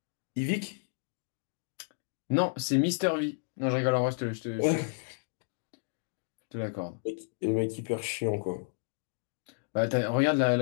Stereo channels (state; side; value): silent; right; digital silence